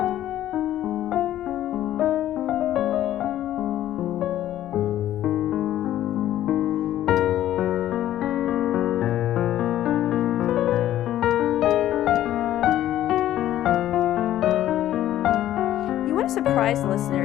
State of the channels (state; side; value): quieter; right; 12.7 dB